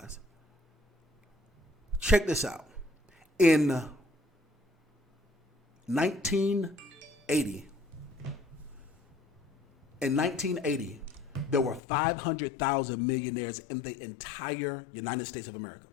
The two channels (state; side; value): drops out; right; at 11.8 s